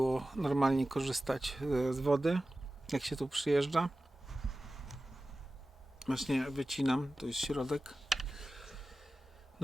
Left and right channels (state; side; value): normal; both; correlation 0.95